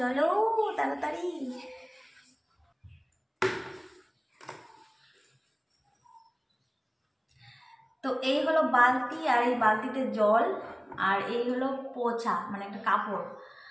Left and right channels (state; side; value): identical; both; correlation 1.00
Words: তাড়াতাড়ি। তো এই হলো বালতি, আর এই বালতিতে জল, আর এই হলো পোছা মানে একটা কাপড়।